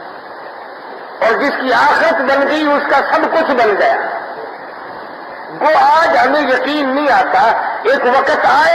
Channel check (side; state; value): both; identical; correlation 1.00